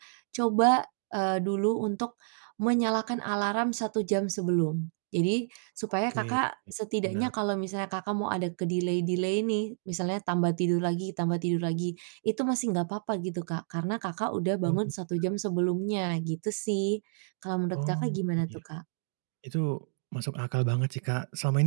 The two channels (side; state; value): left; silent; digital silence